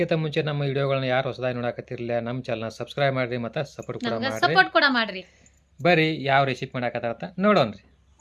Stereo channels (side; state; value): both; identical; correlation 1.00